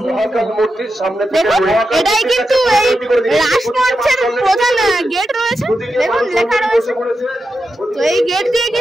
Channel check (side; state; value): both; normal; correlation 0.88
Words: মূর্তির সামনে এটাই কিন্তু এই রাসমঞ্চের প্রধান গেট রয়েছে। দেখুন লেখা রয়েছে, তো এই গেট দিয়ে